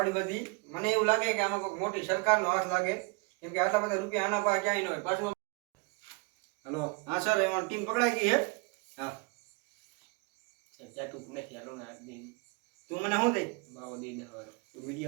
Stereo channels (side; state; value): left; quieter; 28.9 dB